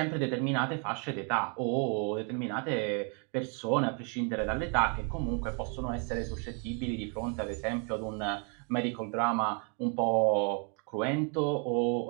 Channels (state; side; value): quieter; left; 38.0 dB